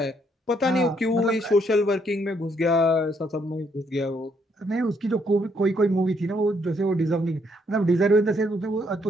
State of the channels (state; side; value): normal; both; correlation 0.71